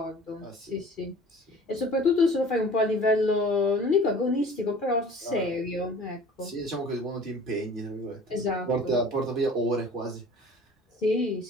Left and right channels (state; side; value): normal; both; correlation 0.46